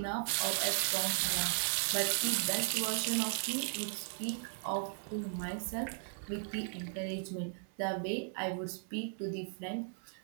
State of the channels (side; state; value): left; silent; 53 dB below the other